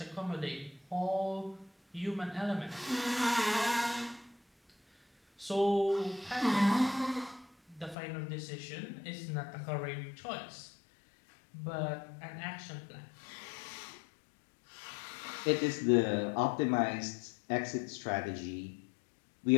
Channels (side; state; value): right; drops out; at 8.0 s